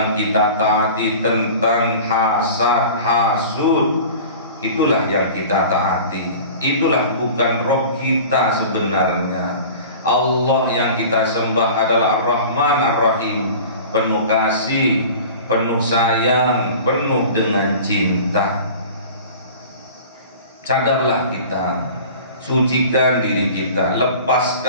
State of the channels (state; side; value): inverted; both; correlation -0.40